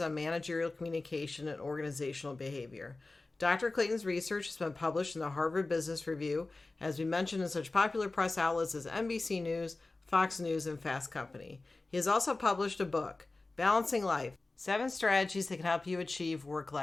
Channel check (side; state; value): right; quieter; 3.3 dB